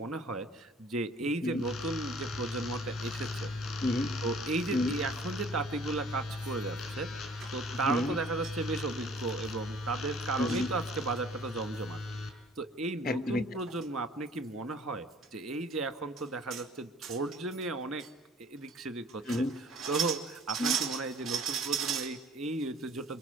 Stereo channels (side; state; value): both; normal; correlation 0.53